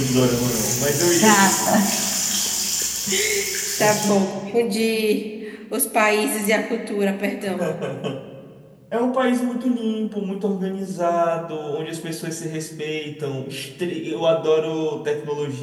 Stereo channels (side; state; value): both; identical; correlation 1.00